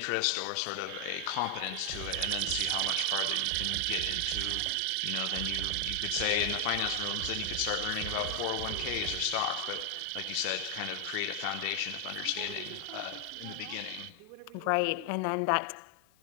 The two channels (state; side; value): different; both; correlation 0.00